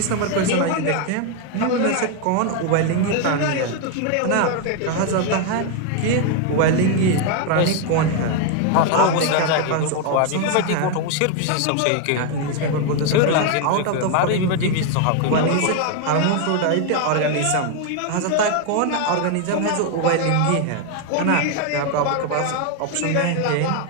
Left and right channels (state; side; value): different; both; correlation 0.01